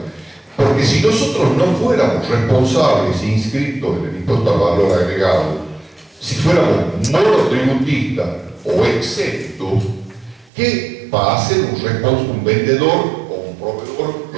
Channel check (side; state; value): left; drops out; at 10.5 s